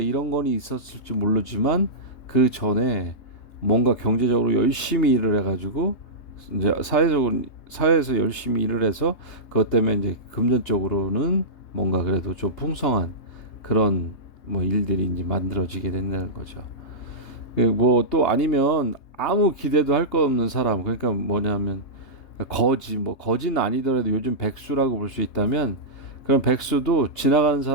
건이 있었을지 모르지만 그 전에 뭔가 경제적으로 열심히 일을 해가지고 이제 사회에서 열심히 일을 해서 그것 때문에 이제 금전적으로는 뭔가 그래도 좀 풍성한 그런 뭐 일들이 이제 만들어지게 된다는 거죠. 뭐 또 아니면 아무 기대도 할 거 없는 사람, 그러니까 뭐냐면 거지, 뭐 거지는 아니더라도 요즘 백수라고 볼 수 있다면 그런 백수도 지나가는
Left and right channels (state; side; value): late; right; 3.3 ms